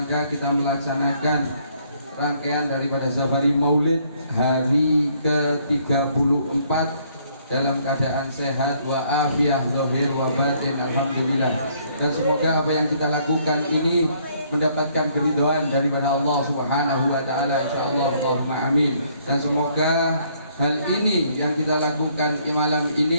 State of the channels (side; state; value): both; inverted; correlation -0.66